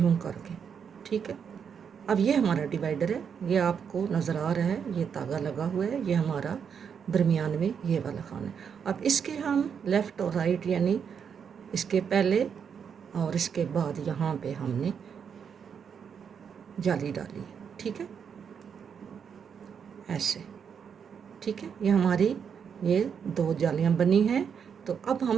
करके। ठीक है, अब ये हमारा डिवाइडर है, ये आपको नज़र आ रहा है, ये तागा लगा हुआ है, ये हमारा दरमियान में ये वाला खाना है। अब इसके हम लेफ़्ट और राइट यानी इसके पहले और इसके बाद यहाँ पे हमने जाली डाली है। ठीक है, ऐसे। ठीक है, ये हमारी ये 2 जालियाँ बनी हैं। तो अब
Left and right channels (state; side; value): quieter; left; 7.1 dB